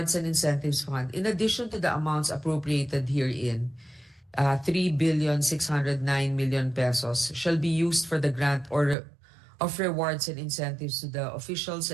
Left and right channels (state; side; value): drops out; left; at 9.0 s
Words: and incentives fund. In addition to the amounts appropriated herein, 3,609,000,000 pesos shall be used for the grant of rewards and incentives to the officials